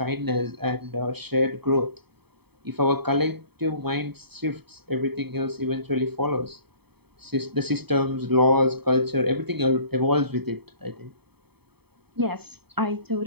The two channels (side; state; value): left; late; 0.97 ms